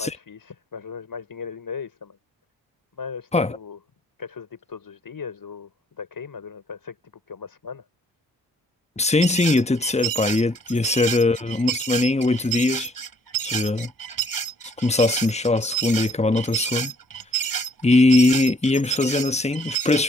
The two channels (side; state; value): both; normal; correlation 0.64